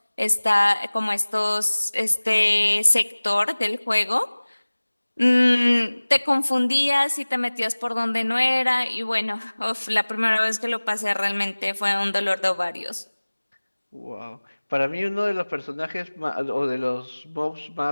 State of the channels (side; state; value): both; inverted; correlation -1.00